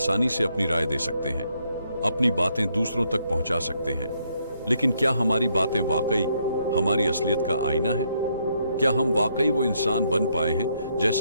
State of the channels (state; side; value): inverted; both; correlation -0.74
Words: से अपनी राय दे सकते हैं, अपनी बातें दूसरों तक पहुंचा सकते हैं, लेकिन क्या हमारी बातें वाकई हमारी असलियत का आईना है? क्या हम वाकई वो इंसान बन पाए हैं